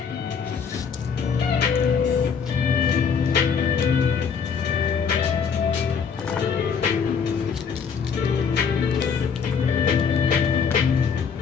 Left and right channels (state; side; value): quieter; right; 6.4 dB